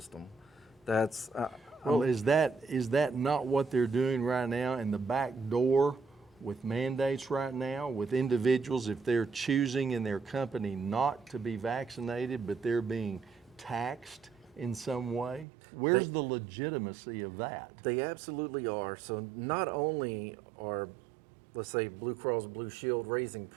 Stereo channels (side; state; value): left; drops out; at 15.5 s